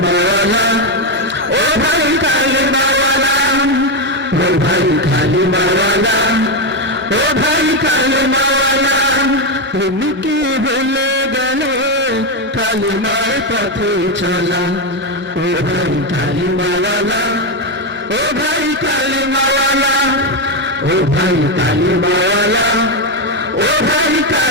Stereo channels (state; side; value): normal; both; correlation 0.08